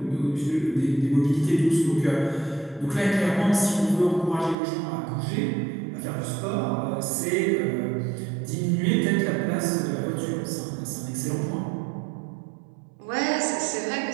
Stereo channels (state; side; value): drops out; left; at 4.5 s